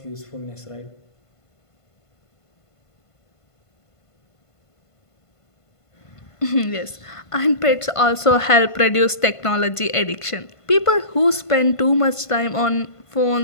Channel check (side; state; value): right; late; 1.5 ms